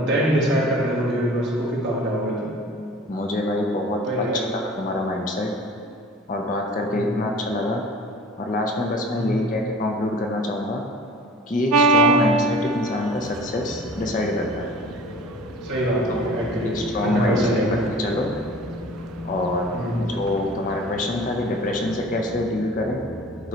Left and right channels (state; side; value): normal; both; correlation 0.44